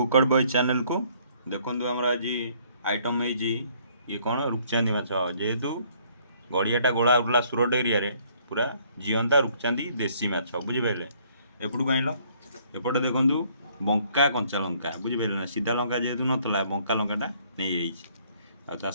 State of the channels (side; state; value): both; inverted; correlation -0.63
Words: बॉय चैनल को देखो आम आज आइटम है ये कौन रूपचांदी माछ जेहेतु गड़ियाटा गोला उठला सुरट एरिया पूरा जीवंता रूपचांदी देसी माछ बुझिपारे एपटू आइल एपटे देखु बंका कंचा लंका बुझिपारे ना सीधा लंका जेहेतु नाला बंका लंकाटा नहीं आ